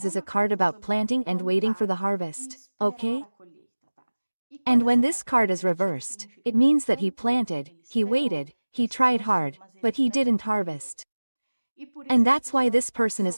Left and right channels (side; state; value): both; inverted; correlation -1.00